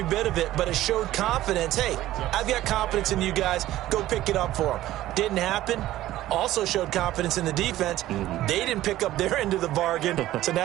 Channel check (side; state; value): left; quieter; 14.8 dB